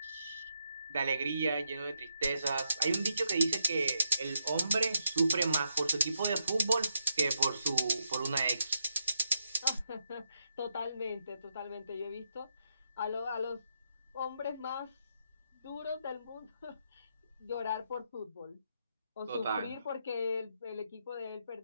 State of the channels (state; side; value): inverted; both; correlation -0.81